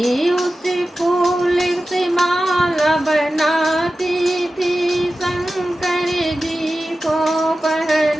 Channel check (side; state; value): both; normal; correlation 0.94